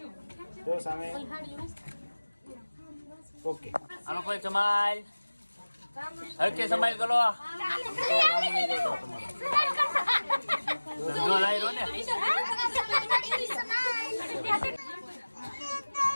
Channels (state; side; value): inverted; both; correlation -1.00